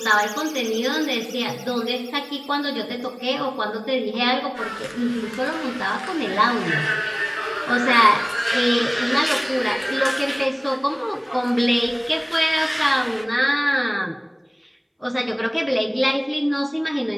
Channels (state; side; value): identical; both; correlation 1.00